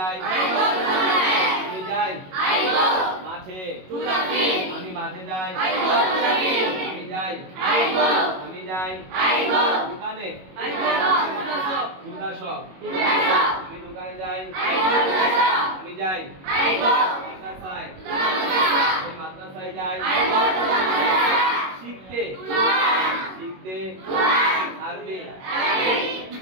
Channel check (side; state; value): left; late; 21 ms